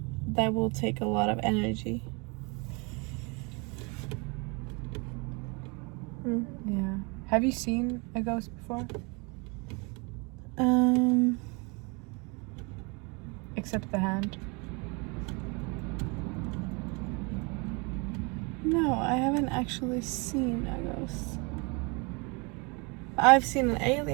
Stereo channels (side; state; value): left; quieter; 30.4 dB